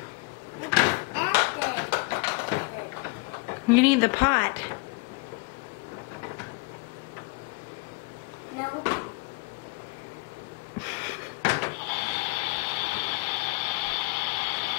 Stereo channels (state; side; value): quieter; right; 30.4 dB